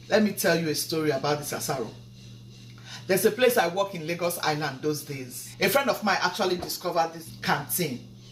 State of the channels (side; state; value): both; identical; correlation 1.00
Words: let me tell you a story about this asaro. There's a place I work in Lagos Island those days. A friend of mine actually discovered this canteen.